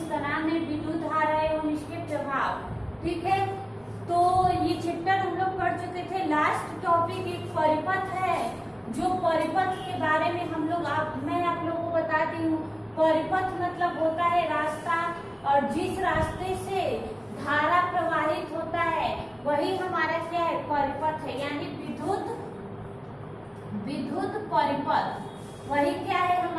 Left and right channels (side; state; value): both; identical; correlation 1.00